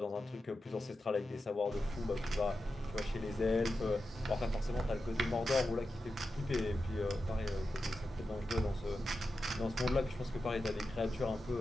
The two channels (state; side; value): normal; both; correlation 0.90